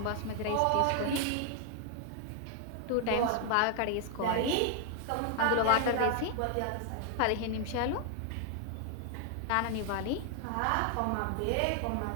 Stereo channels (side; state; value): both; different; correlation 0.00